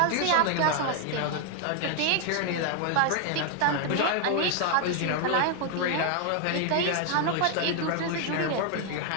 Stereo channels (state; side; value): different; both; correlation 0.01